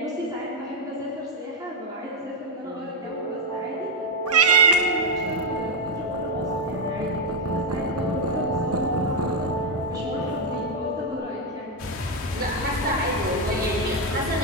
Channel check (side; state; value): both; normal; correlation 0.03